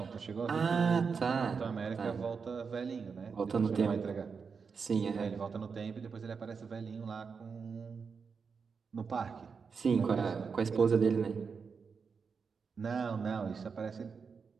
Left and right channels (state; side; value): quieter; left; 5.6 dB